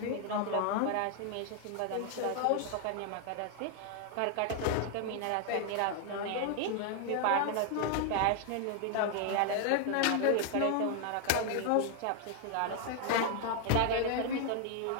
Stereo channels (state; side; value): different; both; correlation 0.00